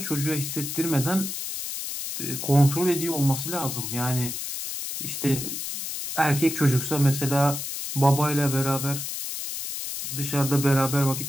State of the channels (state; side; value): noise; left; hiss, 5 dB below the sound